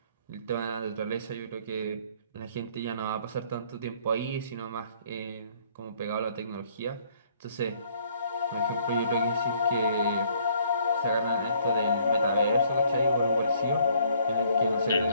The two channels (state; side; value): inverted; both; correlation -0.62